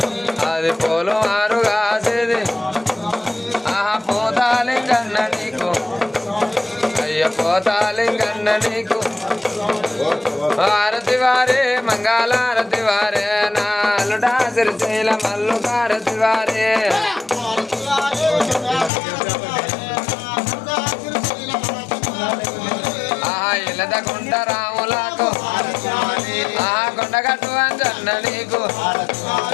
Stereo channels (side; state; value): right; drops out; at 18.9 s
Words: అది పోలు మారు కాసేది ఆహా పోతాలింగన్న నీకు అయ్య పోతాలింగన్న నీకు హారతి వారే మంగళారతి వారే నాలుడా సిరిశైల మల్లు హారతి వారే ఆహా ఇలదకుంట రాములకు ఆహా కొండగట్టు అంజన్న నీకు